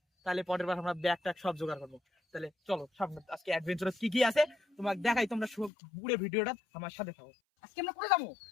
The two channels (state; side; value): drops out; right; at 5.7 s